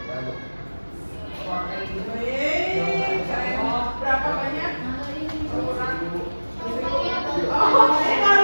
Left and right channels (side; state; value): both; inverted; correlation -1.00